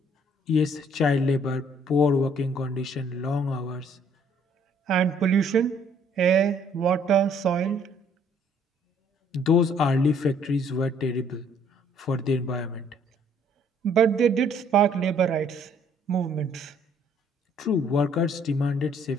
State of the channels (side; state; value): both; normal; correlation 0.62